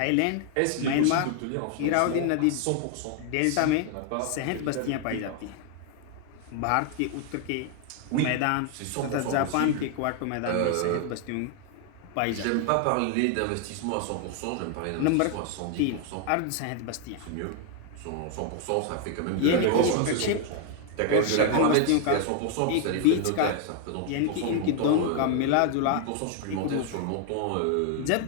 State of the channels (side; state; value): both; different; correlation 0.00